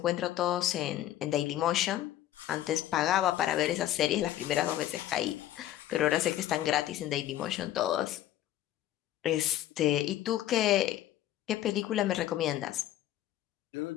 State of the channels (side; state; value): right; quieter; 13.1 dB